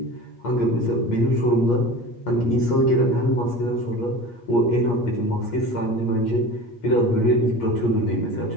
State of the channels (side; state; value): right; late; 8.5 ms